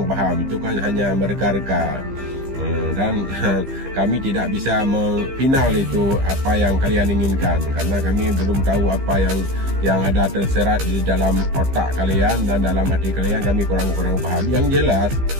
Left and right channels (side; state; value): left; late; 15 ms